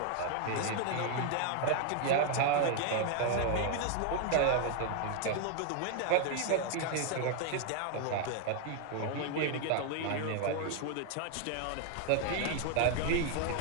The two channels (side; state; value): both; different; correlation 0.00